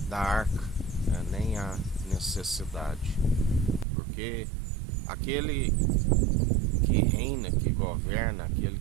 da arca, nem há necessidade, porque aquele que reina, que governa, aquele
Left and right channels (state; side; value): drops out; left; at 3.9 s